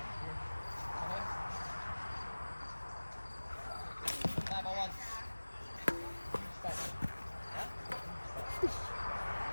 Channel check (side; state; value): both; inverted; correlation -1.00